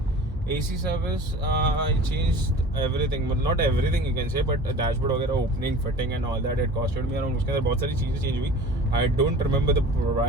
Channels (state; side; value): normal; both; correlation 0.41